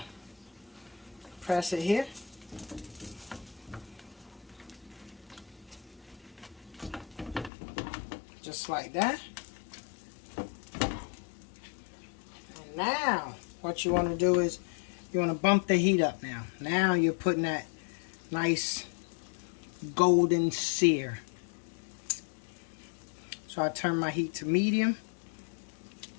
press it here. Just like that. And now what you want to do is you want to bump the heat up now. Now you're putting that nice golden sear. So I turn my heat to medium.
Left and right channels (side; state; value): right; drops out; at 7.5 s